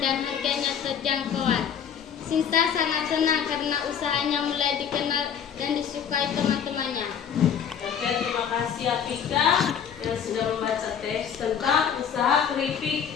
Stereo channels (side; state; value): right; quieter; 8.0 dB